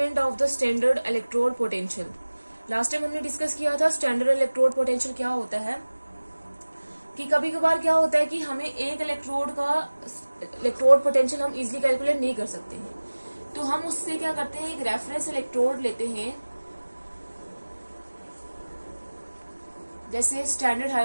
of the standard electrode potential. Last time हमने डिस्कस किया था स्टैंडर्ड इलेक्ट्रोड पोटेंशियल क्या होता है, कि कभी कभार क्या होता है कि हमें एक इलेक्ट्रोड पोटेंशियल हम इजीली कैलकुलेट नहीं कर सकते हैं, तो हम उससे क्या करते हैं, एक रेफरेंस इलेक्ट्रोड लेते हैं, जैसे स्टैंडर्ड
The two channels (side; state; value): both; inverted; correlation -1.00